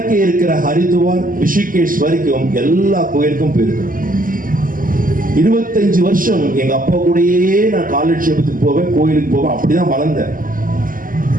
இருக்கிற ஹரித்வார், ரிஷிகேஷ் வரைக்கும் எல்லா கோயிலுக்கும் போயிருக்கிறோம். 25 வருஷம் எங்க அப்பா கூடயே நான் காலட்சேபத்துக்கு போவேன், கோயிலுக்கு போவேன், அப்படிதான் வளர்ந்தேன்.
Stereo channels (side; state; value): left; late; 0.40 ms